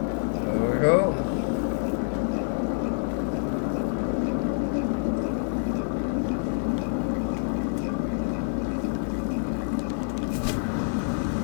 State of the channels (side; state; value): right; silent; digital silence